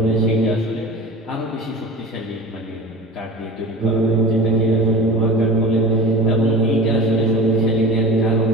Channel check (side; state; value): both; normal; correlation 0.35